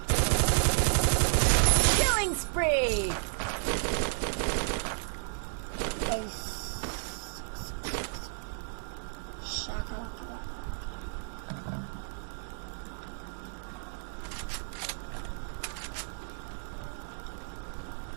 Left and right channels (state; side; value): silent; left; digital silence